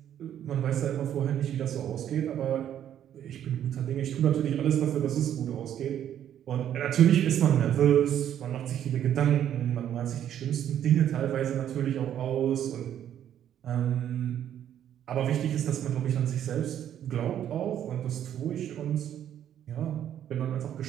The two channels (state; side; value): quieter; left; 10.4 dB